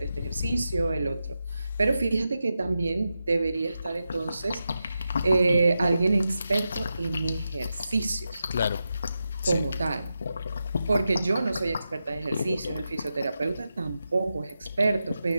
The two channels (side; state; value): both; inverted; correlation -0.89